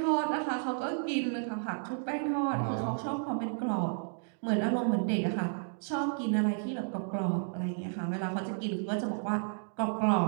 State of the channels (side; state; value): left; silent; digital silence